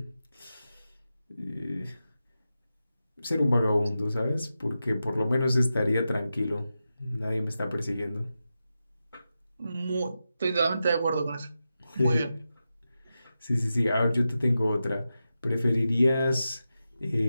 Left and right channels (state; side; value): inverted; both; correlation -0.91